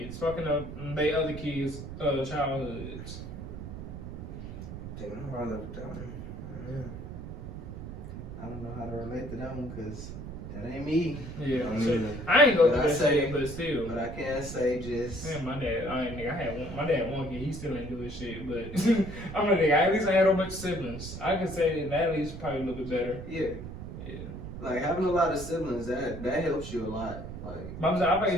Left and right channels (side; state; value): right; noise; rumble, 9 dB below the sound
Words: fucking up they other kids' childhoods. Damn, I'm hard up that one. Yeah. I don't know how to relate to that one because that ain't me. Yeah, I I ain't go But through I that say- shit, but still. But I can't say just. Man, my dad, my dad one kid, he still ain't do his shit, but I'm a nigga, at least I had a bunch of siblings. I could say that at least probably a little bit better. Yeah. Yeah. Like having a lot of siblings, that helps you a lot. Like. But I'm saying, I